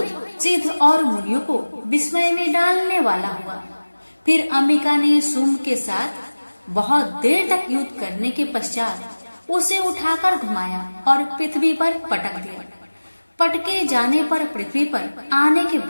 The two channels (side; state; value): both; inverted; correlation -1.00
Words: सिद्ध और मुनियों को विस्मय में डालने वाला हुआ। फिर अंबिका ने शुंभ के साथ बहुत देर तक युद्ध करने के पश्चात उसे उठाकर घुमाया और पृथ्वी पर पटक दिया। पटके जाने पर पृथ्वी पर आने के